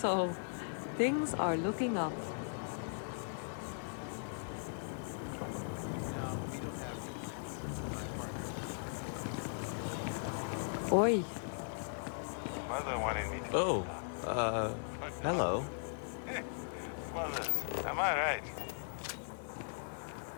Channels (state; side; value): silent; right; 52 dB below the other